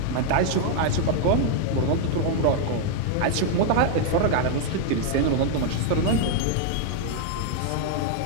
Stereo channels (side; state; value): both; different; correlation 0.00